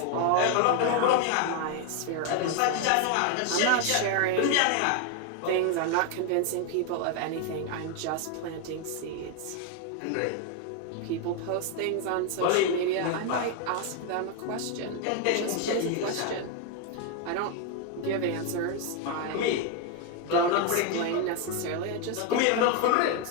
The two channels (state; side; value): different; both; correlation 0.01